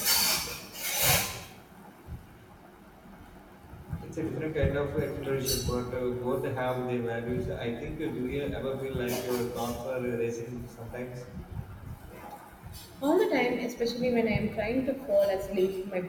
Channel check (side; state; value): both; identical; correlation 1.00